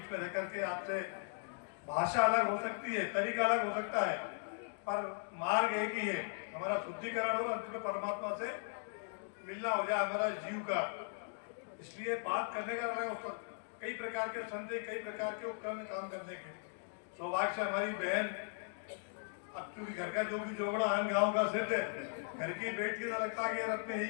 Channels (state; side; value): silent; right; digital silence